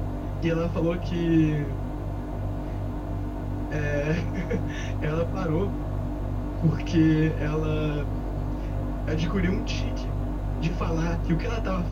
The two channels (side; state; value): both; identical; correlation 1.00